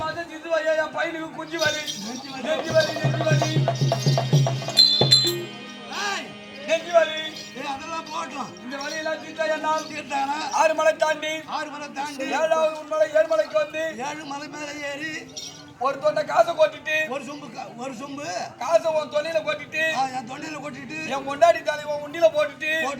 மாசம் சிந்து வலி என் பையனுக்கு குஞ்சு வலி நெஞ்சு வலி அதெல்லாம் போட்டோம் இந்த வலியெல்லாம் தீர்த்தா என்னால் தீர்த்தானா 6 மலை தாண்டி 7வது மலை 7 மலைக்கு வந்து 7 மலை மேல ஏறி ஒரு தொண்டை காசை கொட்டிட்டு ஒரு சொம்பு காசை உன் தொண்டையில கொட்டிட்டு என் தொண்டையில கொட்டிட்டு என் கொண்டாடி தாலி உன் உண்டியில போட்டுட்டு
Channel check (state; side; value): identical; both; correlation 1.00